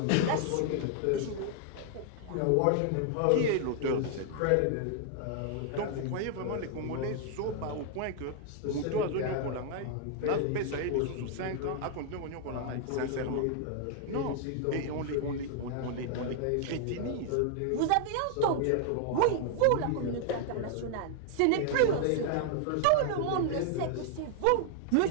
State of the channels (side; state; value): both; different; correlation 0.00